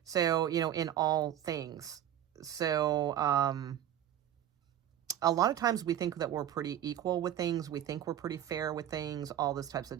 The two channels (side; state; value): left; quieter; 11.0 dB